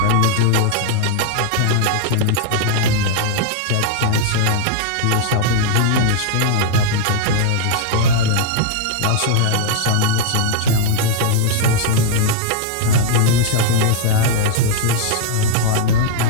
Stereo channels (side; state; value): both; different; correlation -0.01